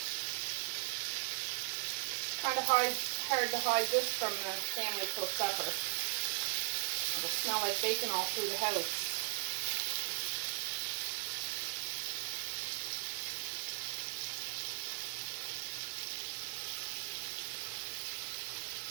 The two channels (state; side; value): silent; left; 52 dB below the other